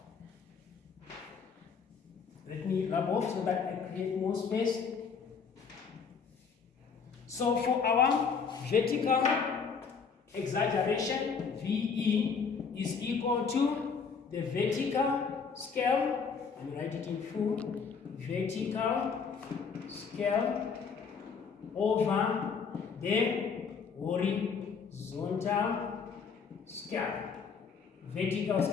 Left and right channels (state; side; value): quieter; right; 5.8 dB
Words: Let me rub off so that I create more space. So for our vertical exaggeration, VE is equal to the vertical scale, and write it in full, vertical scale over the horizontal scale. vertical